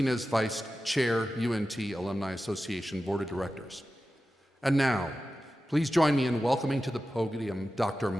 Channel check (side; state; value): both; normal; correlation 0.93